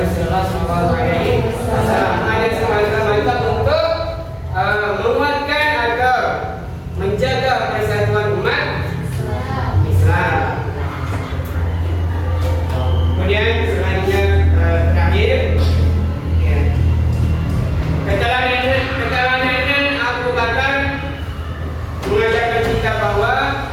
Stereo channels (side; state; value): both; identical; correlation 1.00